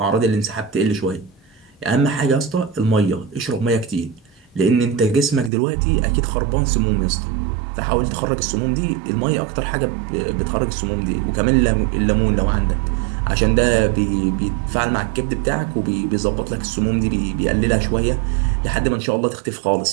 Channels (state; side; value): drops out; left; at 5.5 s